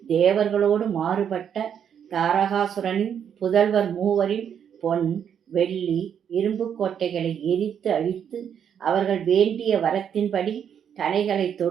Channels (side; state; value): left; quieter; 8.4 dB